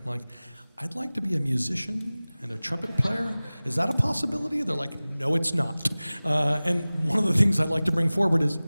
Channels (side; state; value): both; inverted; correlation -0.99